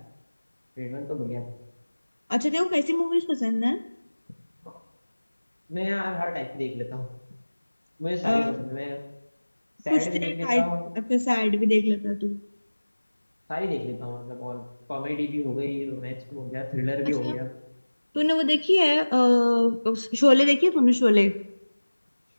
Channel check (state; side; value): inverted; both; correlation -1.00